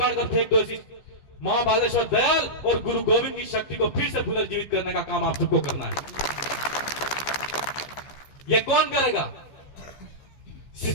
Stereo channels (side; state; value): right; late; 15 ms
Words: कर फेंक दो। ऐसी महाबालेश्वर दयाल और गुरु गोविंद की शक्ति को फिर से पुनर्जीवित करने का काम आप सबको करना है। ये कौन करेगा?